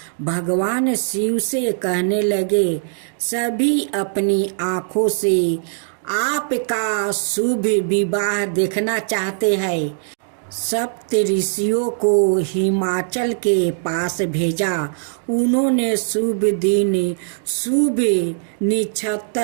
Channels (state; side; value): silent; left; digital silence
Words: भगवान शिव से कहने लगे, सभी अपनी आंखों से आपका शुभ विवाह देखना चाहते हैं। सप्त ऋषियों को हिमाचल के पास भेजा। उन्होंने शुभ दिन, शुभ